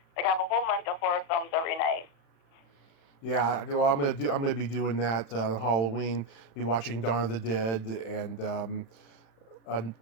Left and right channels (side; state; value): right; late; 35 ms